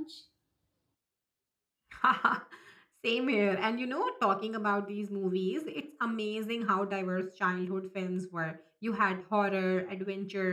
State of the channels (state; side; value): identical; both; correlation 1.00